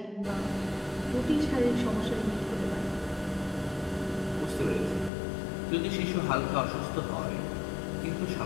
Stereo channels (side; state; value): right; drops out; at 5.1 s